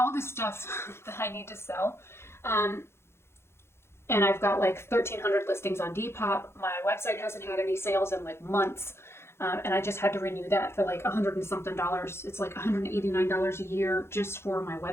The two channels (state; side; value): late; right; 0.12 ms